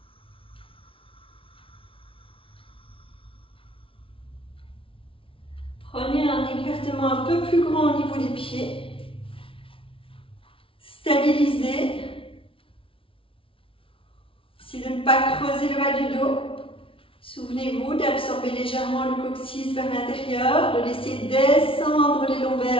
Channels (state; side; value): late; right; 0.26 ms